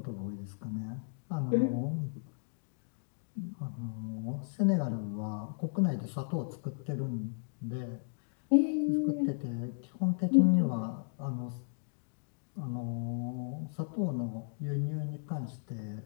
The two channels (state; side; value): silent; right; digital silence